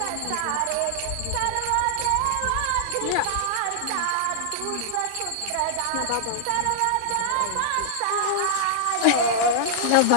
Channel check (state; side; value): different; both; correlation -0.01